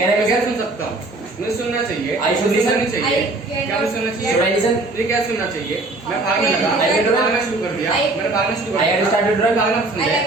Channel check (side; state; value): left; quieter; 3.0 dB